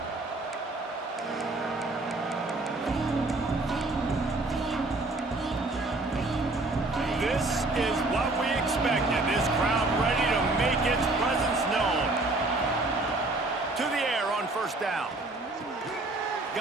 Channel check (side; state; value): left; quieter; 3.0 dB